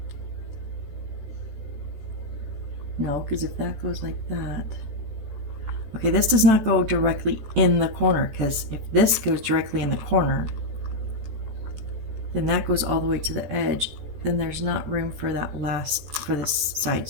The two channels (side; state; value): left; late; 14 ms